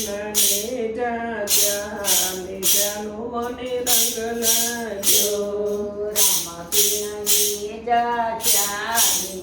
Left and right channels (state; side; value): identical; both; correlation 1.00